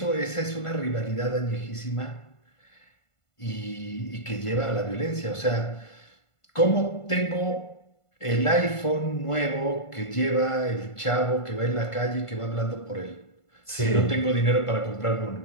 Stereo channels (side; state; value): right; late; 1.5 ms